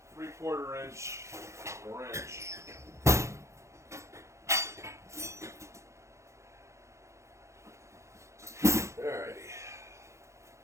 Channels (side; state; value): left; late; 0.14 ms